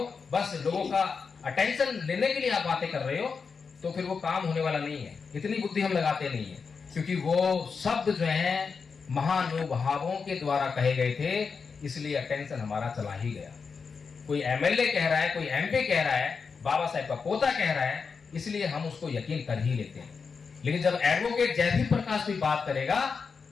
बस लोगों का अटेंशन लेने के लिए आप बातें कर रहे हो, तो फिर वो काम होने वाला नहीं है। इतनी बुद्धि हम लगाते नहीं है, क्योंकि वो शब्द जो है महानुभावों के द्वारा कहे गए थे, इसलिए अटेंशन हमारा चला ही गया। कोई एमएलए कह रहा है, कोई एमपी कह रहा है, बाबा साहेब का पोता कह रहा है, इसलिए हम उसको यकीन कर ही लेते हैं। लेकिन जब एडवोकेट जयदीप प्रकाश कोई बात करेगा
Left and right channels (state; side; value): quieter; right; 5.4 dB